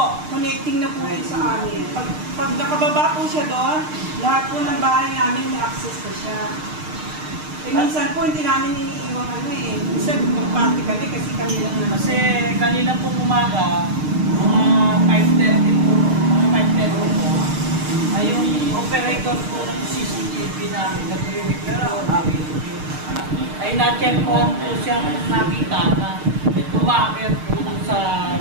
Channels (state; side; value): late; left; 6.5 ms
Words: connecting na po yun sa amin. Pag nakababa po siya doon, lahat po ng bahay namin may access po siya. Eh, minsan po, hindi namin iniiwang minsan magparty kami kasi kami lang naman. Kasi kanina po umaga, mga 5:30 po, mga 5:30 po, ay yung operator po ng CCTV namin, nag-repair po namin. Ay na-check po siyang nakita na tumakit po sa